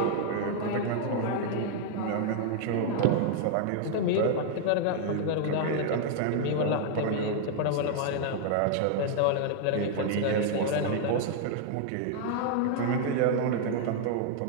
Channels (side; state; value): both; different; correlation 0.00